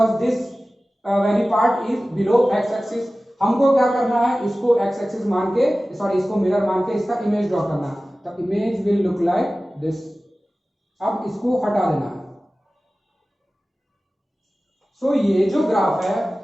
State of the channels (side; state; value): both; normal; correlation 0.96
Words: this very part is below x axis. हमको क्या करना है, इसको x एक्सिस मान के, सॉरी इसको मिरर मान के इसका इमेज ड्रॉ करना है। The image will look like this. अब इसको हटा देना है। सो ये जो ग्राफ है,